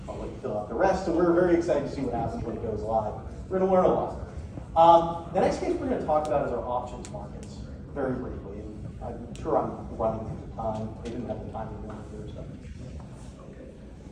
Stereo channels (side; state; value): both; identical; correlation 1.00